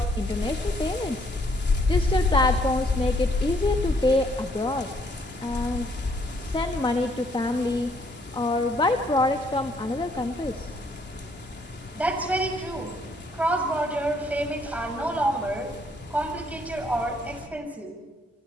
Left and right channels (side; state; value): both; normal; correlation 0.68